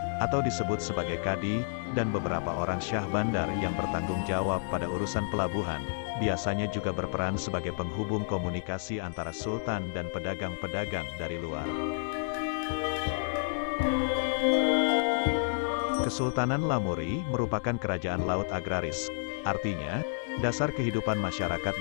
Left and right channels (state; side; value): silent; right; digital silence